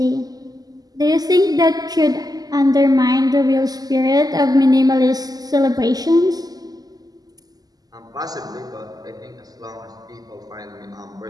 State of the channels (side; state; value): left; late; 0.18 ms